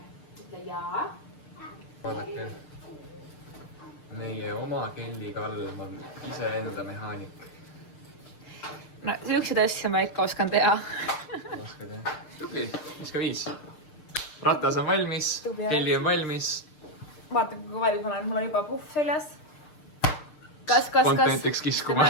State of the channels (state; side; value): late; right; 6.6 ms